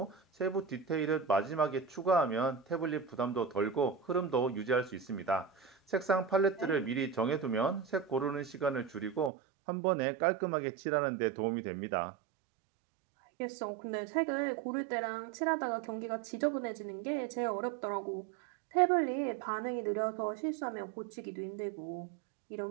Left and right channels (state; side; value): drops out; left; at 9.3 s